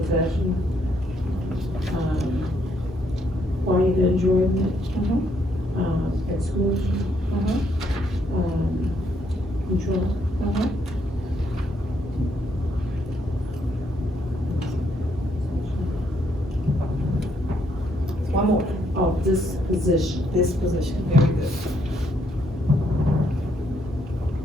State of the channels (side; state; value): both; normal; correlation 0.73